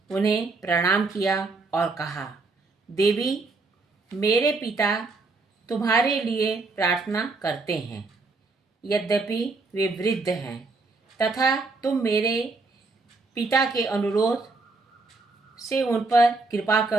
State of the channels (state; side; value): quieter; left; 3.7 dB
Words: उन्हें प्रणाम किया और कहा, देवी, मेरे पिता तुम्हारे लिए प्रार्थना करते हैं। यद्यपि वे वृद्ध हैं तथा तुम मेरे पिता के अनुरोध से उन पर कृपा